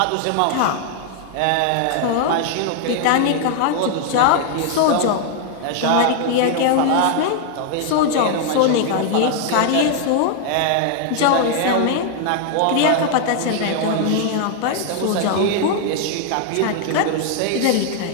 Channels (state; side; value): different; both; correlation 0.00